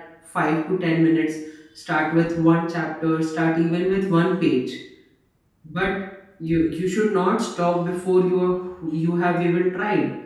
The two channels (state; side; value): identical; both; correlation 1.00